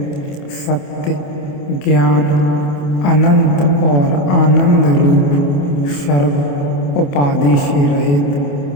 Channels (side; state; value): right; late; 28 ms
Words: सत्य, ज्ञान, अनंत और आनंद रूप, सर्व उपाधि से